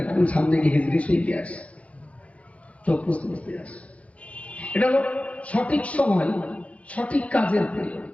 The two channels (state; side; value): late; right; 0.064 ms